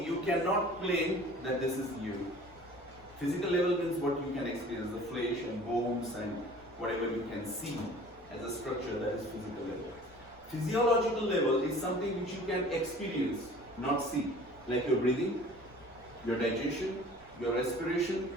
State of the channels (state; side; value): noise; right; rumble, 27 dB below the sound